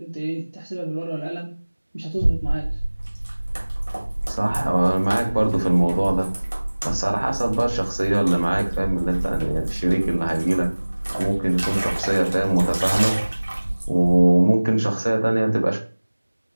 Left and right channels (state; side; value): inverted; both; correlation -1.00